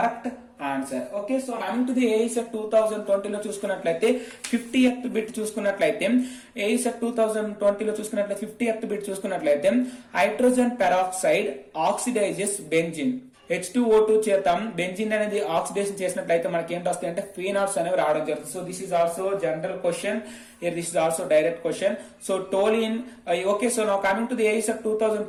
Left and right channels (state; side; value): identical; both; correlation 1.00